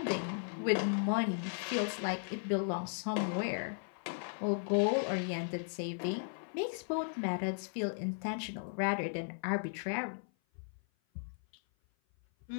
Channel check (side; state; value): right; silent; 54 dB below the other